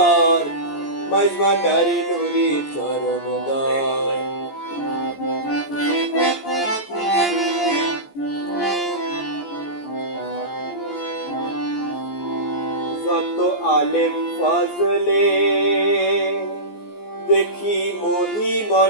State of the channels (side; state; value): right; late; 14 ms